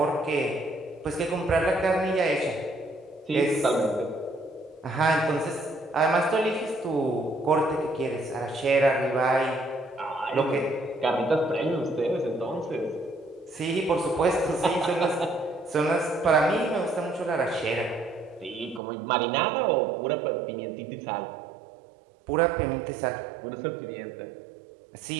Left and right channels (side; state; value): left; drops out; at 18.8 s